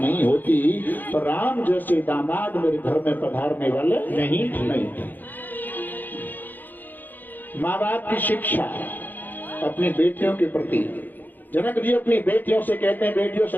होती तो राम जैसे दामाद मेरे घर में पधारने वाले नहीं थे। माँ बाप की शिक्षा अपनी बेटियों के प्रति, जनक जी अपनी बेटियों से कहते हैं, बेटियों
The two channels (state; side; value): late; right; 0.087 ms